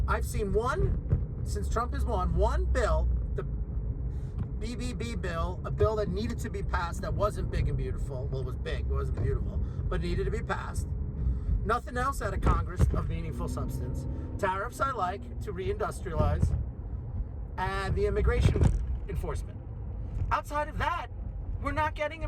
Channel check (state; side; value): identical; both; correlation 1.00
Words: I've seen one, since Trump has won, one bill, the BBB bill, a bill that needed to be passed that wasn't big and beautiful. Well, it was big, it wasn't beautiful, but needed to be passed. Nothing else out of Congress of meaningful substance. Tariffs I like to reindustrialize, and the immigration enforcement. Outside of that, we're not getting